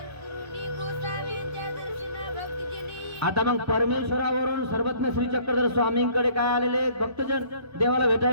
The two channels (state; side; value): late; left; 1.3 ms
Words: आता मग परमेश्वरावरून सर्वज्ञ श्री चक्रधर स्वामींकडे काय आलेले भक्तजन देवाला